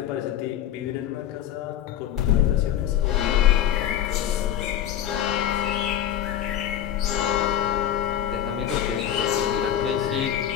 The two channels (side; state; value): right; quieter; 10.7 dB